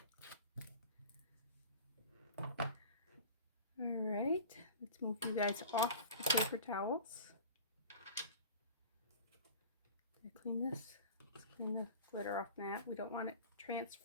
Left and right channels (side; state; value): both; inverted; correlation -0.37